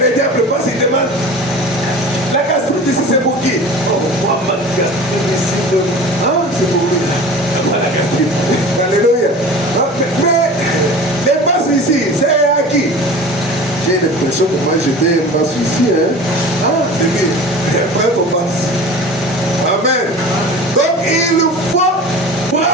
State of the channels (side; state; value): both; normal; correlation 0.38